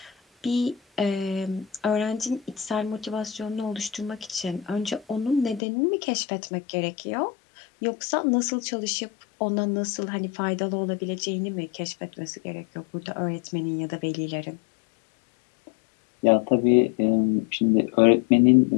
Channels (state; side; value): drops out; right; at 5.6 s